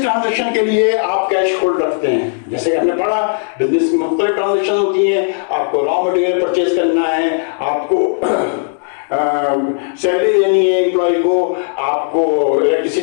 transaction के लिए आप कैश होल्ड रखते हैं। जैसे कि हमने पढ़ा बिजनेस में मुख्तलिफ ट्रांजैक्शन होती हैं, आपको रॉ मटेरियल परचेज करना है, आपको सैलरी देनी है एम्प्लॉय को, आपको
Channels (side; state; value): right; silent; 68 dB below the other